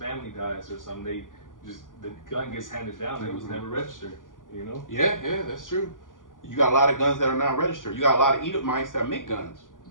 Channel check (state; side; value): late; right; 0.89 ms